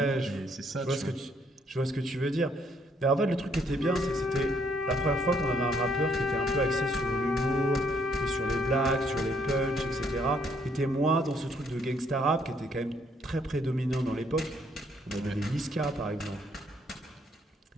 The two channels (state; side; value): normal; both; correlation 0.68